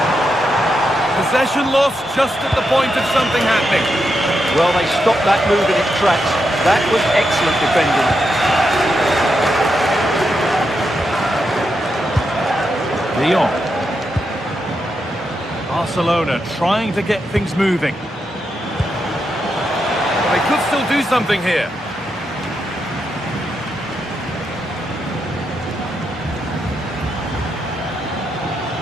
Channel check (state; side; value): normal; both; correlation 0.84